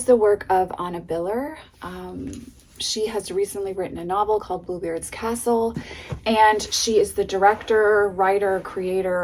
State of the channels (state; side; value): identical; both; correlation 1.00